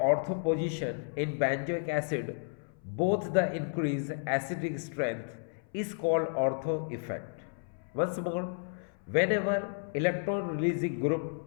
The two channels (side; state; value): right; silent; 56 dB below the other